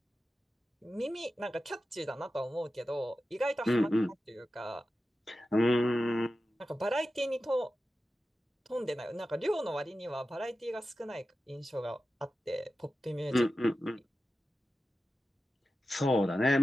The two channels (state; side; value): normal; both; correlation 0.93